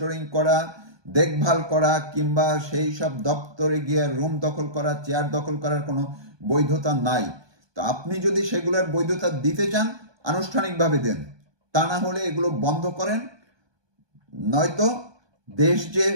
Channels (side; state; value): left; late; 1.2 ms